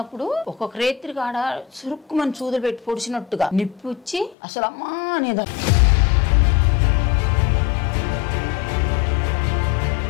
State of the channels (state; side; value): drops out; right; at 4.4 s